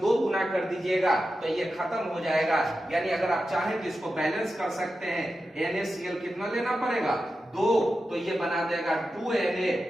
गुना कर दीजिएगा तो ये खत्म हो जाएगा। यानी अगर आप चाहें तो इसको बैलेंस कर सकते हैं। NaCl कितना लेना पड़ेगा, 2, तो ये बना देगा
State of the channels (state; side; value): normal; both; correlation 0.91